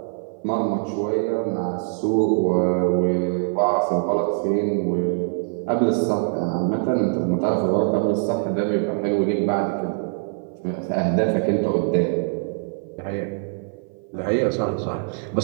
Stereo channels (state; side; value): silent; left; 56 dB below the other